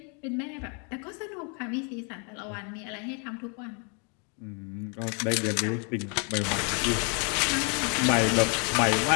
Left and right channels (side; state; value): right; quieter; 36.8 dB